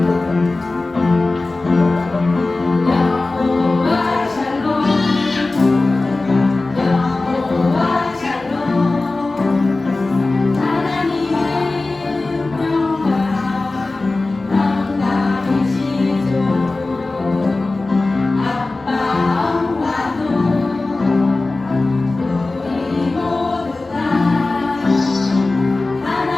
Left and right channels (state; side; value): quieter; right; 3.3 dB